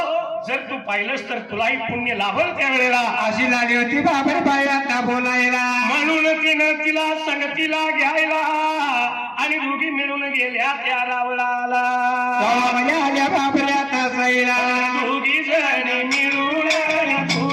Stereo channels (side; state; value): both; identical; correlation 1.00